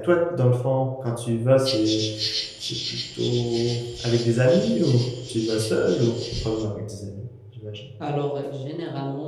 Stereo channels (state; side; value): identical; both; correlation 1.00